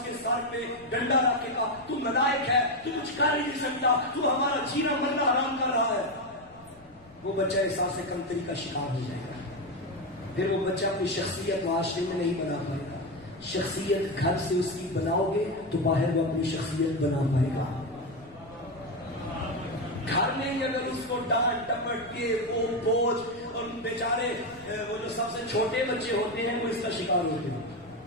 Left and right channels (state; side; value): noise; left; rumble, 26 dB below the sound